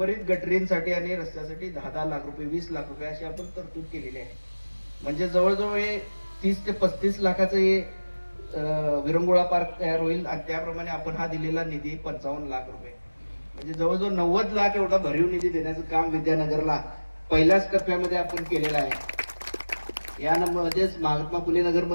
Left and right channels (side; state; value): both; inverted; correlation -1.00